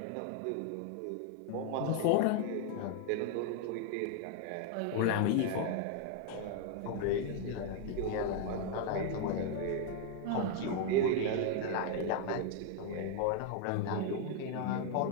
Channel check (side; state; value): both; different; correlation 0.00